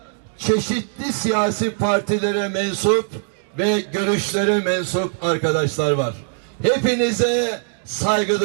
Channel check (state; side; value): silent; left; digital silence